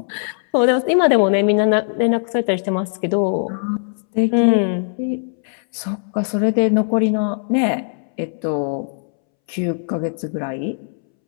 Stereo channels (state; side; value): silent; right; 65 dB below the other